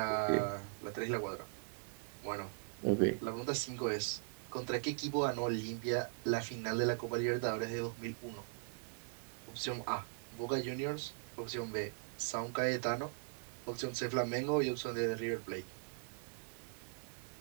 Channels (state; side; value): silent; left; digital silence